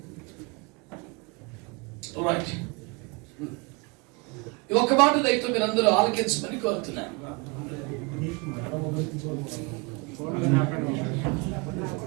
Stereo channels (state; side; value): quieter; left; 29.8 dB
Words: ఈ ఒక్క మాట దయతో మీరందరూ ఆలకించమని కోరుతున్నాను.